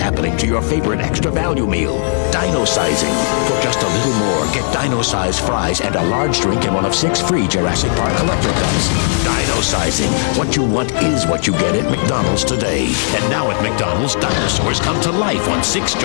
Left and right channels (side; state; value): right; silent; 69 dB below the other